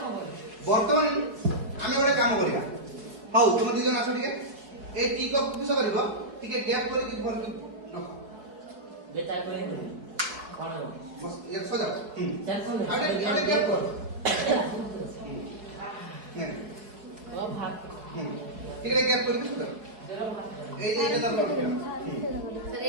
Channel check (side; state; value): left; late; 4.5 ms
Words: बर्तमान आमे गोटे काम करिया हाउ तुम दी जन आस टिके ए टी कप किस करबो टिके गैप करि कि भर कि बेटा कोइ कोन बस ये सजा अरे गैप कर ओ भाग टिके गैप करि सजा ए दादा रखिया